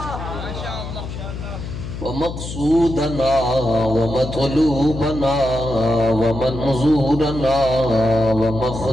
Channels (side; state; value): left; noise; hum, 8 dB below the sound